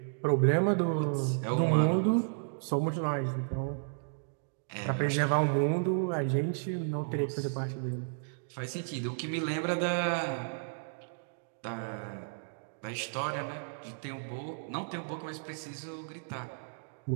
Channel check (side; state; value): left; silent; digital silence